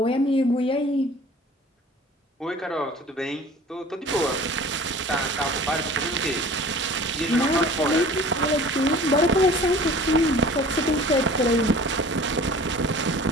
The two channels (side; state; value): both; normal; correlation 0.45